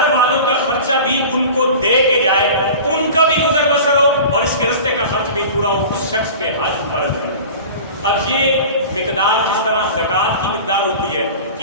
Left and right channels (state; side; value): inverted; both; correlation -0.37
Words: والوں کا خرچہ بھی ان کو دے کے جائے، ان کا بھی گزر بسر ہو اور اس کے رستے کا خرچ بھی پورا ہو، اس شخص پہ حج فرض ہے۔ اب یہ مقدار جس طرح زکوٰۃ کی مقدار ہوتی ہے کہ